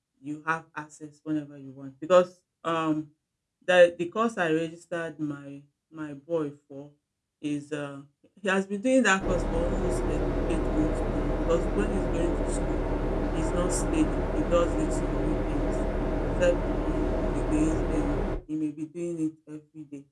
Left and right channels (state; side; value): identical; both; correlation 1.00